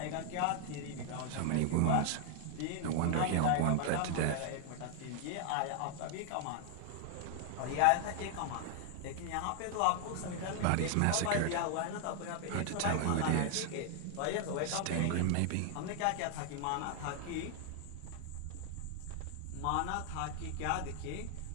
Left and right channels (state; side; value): different; both; correlation 0.00